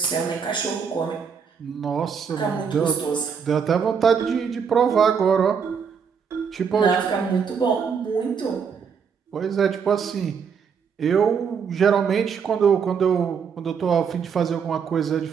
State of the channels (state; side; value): quieter; left; 6.6 dB